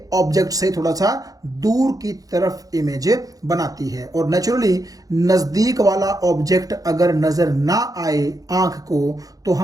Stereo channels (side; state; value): left; late; 0.17 ms